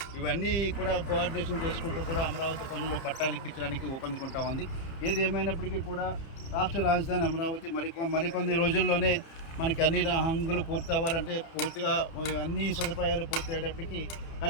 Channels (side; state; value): right; late; 30 ms